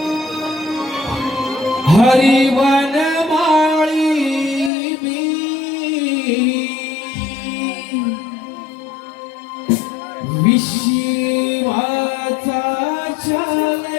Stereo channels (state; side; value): drops out; right; at 4.7 s